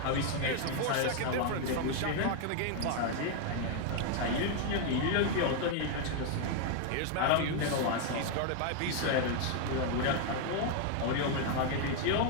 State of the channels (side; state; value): both; different; correlation 0.00